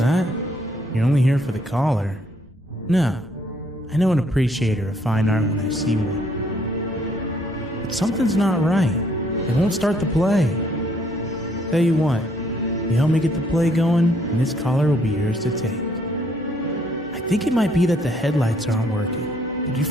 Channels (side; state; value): both; normal; correlation 0.67